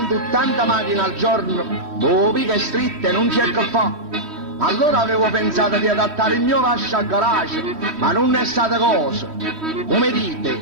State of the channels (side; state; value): left; late; 3.1 ms